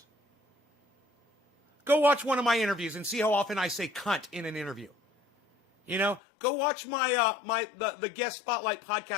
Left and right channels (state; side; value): drops out; right; at 6.2 s